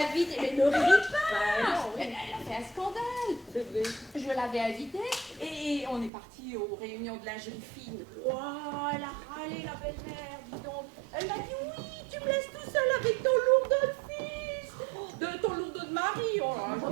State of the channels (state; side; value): drops out; left; at 6.1 s